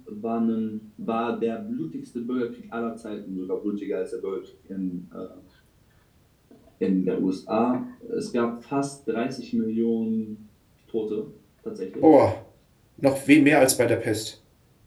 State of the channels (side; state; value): both; identical; correlation 1.00